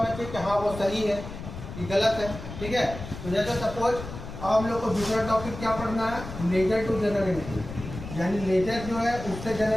चाहिए कि हाँ वो सही है कि गलत है। ठीक है, तो जैसे सपोज अब हम लोग को दूसरा टॉपिक क्या पढ़ना है, लेजर टू जर्नल एंट्री, यानी लेजर जो है उससे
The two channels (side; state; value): left; noise; rumble, 10 dB below the sound